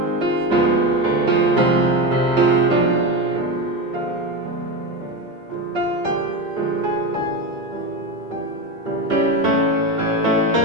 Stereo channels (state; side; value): normal; both; correlation 0.18